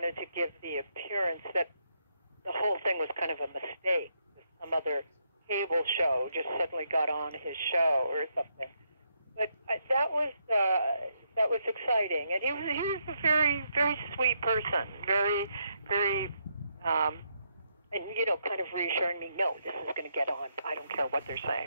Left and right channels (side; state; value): both; inverted; correlation -0.77